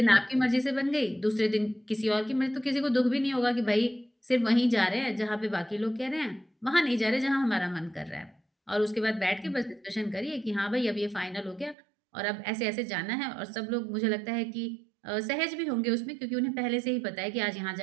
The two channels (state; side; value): drops out; left; at 11.8 s